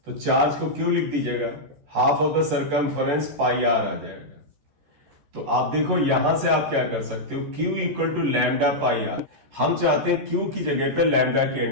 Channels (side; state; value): left; late; 14 ms